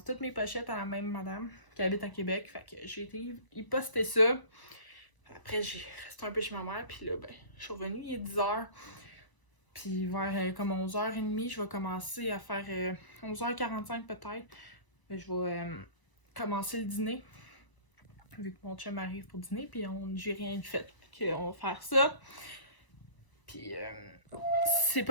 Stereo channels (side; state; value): right; late; 1.0 ms